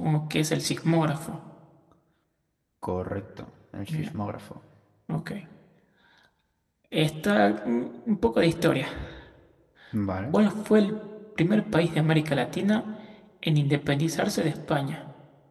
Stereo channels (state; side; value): identical; both; correlation 1.00